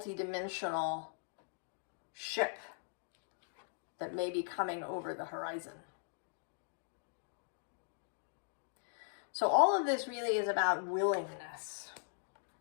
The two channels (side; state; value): right; silent; digital silence